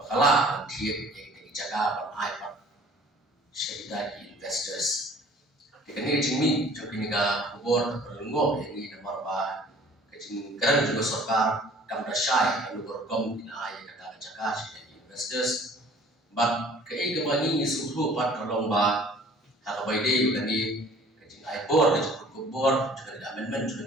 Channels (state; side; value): normal; both; correlation 0.51